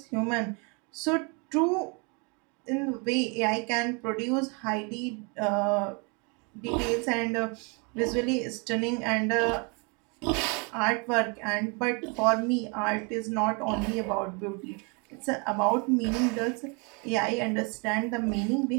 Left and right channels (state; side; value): quieter; left; 32.9 dB